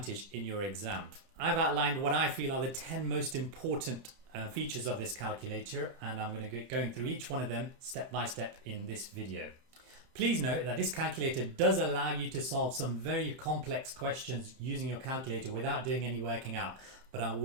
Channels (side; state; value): left; late; 30 ms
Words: in your exam. I've outlined what I feel are the 10 most important features of this calculator, and I'm going to go going through each one of them step by step in this video. Please note that this calculator does allow you to solve some very complex questions using your calculator without doing any working out, but I